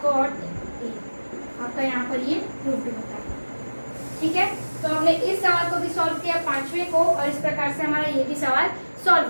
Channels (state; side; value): inverted; both; correlation -1.00